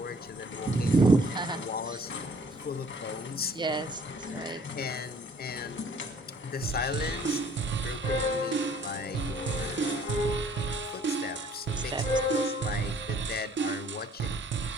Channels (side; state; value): both; normal; correlation 0.57